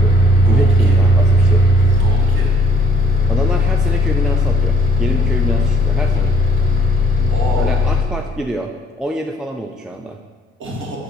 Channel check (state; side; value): normal; both; correlation 0.62